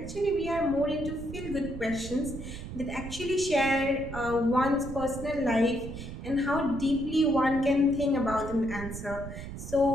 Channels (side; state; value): right; noise; rumble, 10 dB below the sound